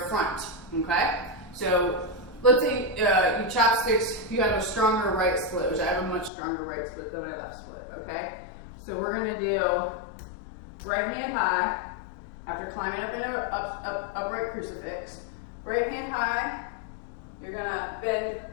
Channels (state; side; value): drops out; right; at 6.3 s